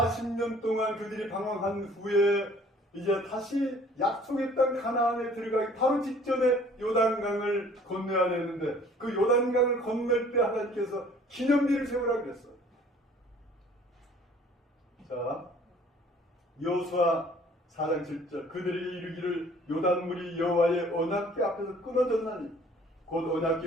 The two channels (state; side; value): normal; both; correlation 0.54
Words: 동안 그들이 방황한 후에 이제 다시 약속의 땅 가나안에 들어가기 바로 직전에 요단강을 건너야 되는데 그 요단강을 건널 때 하나님께서 기념비를 세우라고 그랬어요. 자, 여호수아 4장 7절 그들이 이르기를 요단물이 여호와의 언약궤 앞에서 끊어졌나니 곧